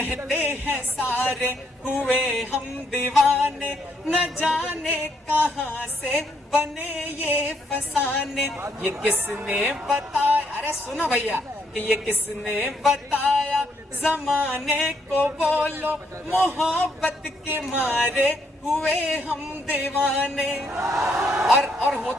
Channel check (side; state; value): both; normal; correlation 0.73